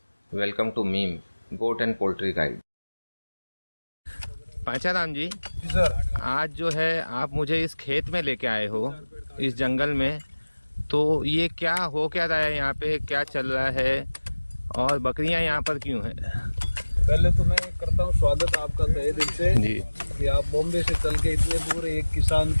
welcome to meme goat and poultry guide. Pancharam ji, sir. आज जो है आप मुझे इस खेत में लेके आए हो, इस जंगल में, तो ये क्या हो क्या रहा है यहाँ पे, क्या चल रहा है और बकरियां यहाँ पर क्यों हैं? पहले तो मैं करता हूँ स्वागत आपका तहे दिल से जी कि आप बॉम्बे से चल के इतने दूर एक किसान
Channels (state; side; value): inverted; both; correlation -1.00